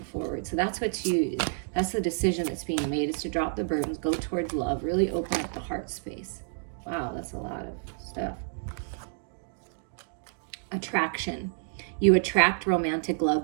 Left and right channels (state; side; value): silent; left; digital silence